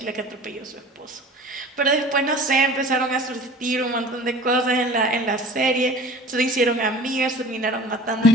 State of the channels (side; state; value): both; normal; correlation 0.44